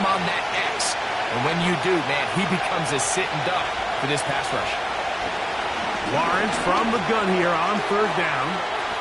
on that X. And when you do, man, he becomes a sitting duck for this pass rush. Lawrence from the gun here on third down.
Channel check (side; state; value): both; identical; correlation 1.00